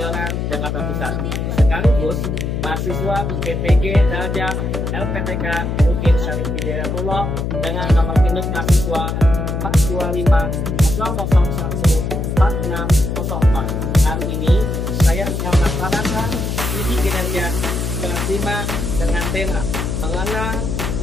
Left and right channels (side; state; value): left; noise; hum, 2 dB below the sound